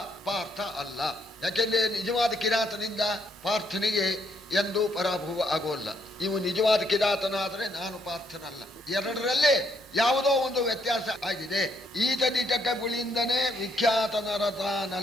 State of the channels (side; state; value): both; normal; correlation 0.72